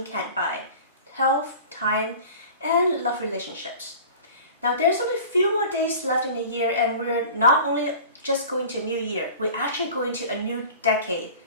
can't buy: health, time, and love relationships. Now, there's only a few more days left in the year, and we're not only just going to a new year, we're actually going to a new decade.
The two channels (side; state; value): both; inverted; correlation -0.41